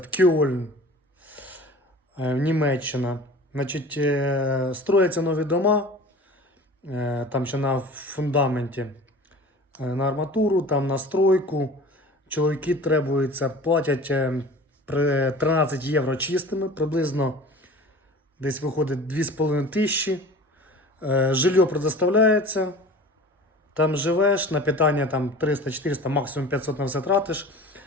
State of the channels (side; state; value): both; normal; correlation 0.41